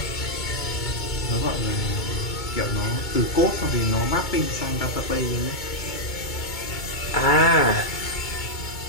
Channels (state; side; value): late; right; 2.2 ms